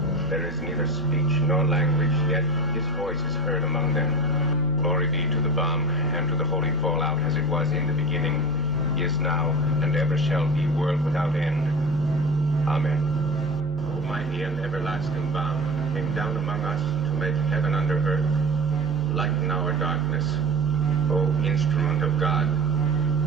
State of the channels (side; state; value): both; normal; correlation 0.30